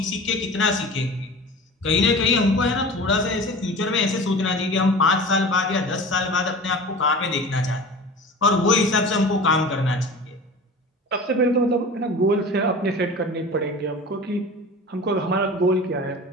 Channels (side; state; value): both; normal; correlation 0.37